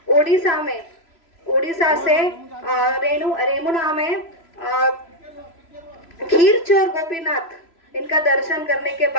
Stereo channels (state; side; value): late; right; 3.0 ms